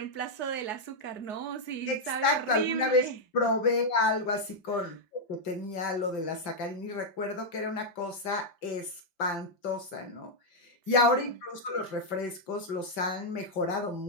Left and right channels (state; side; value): late; right; 5.8 ms